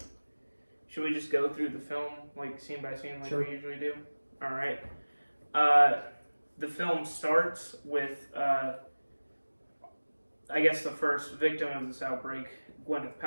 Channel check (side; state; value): both; inverted; correlation -1.00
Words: should we just go through the film, like scene by scene, like Sure. we usually do? Alright. The film starts with, I guess, the first victim of this outbreak, Gwyneth